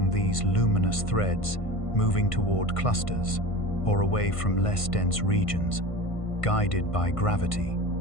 these luminous threads, moving toward clusters or away from less dense regions, guided by gravity,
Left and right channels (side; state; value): right; late; 1.5 ms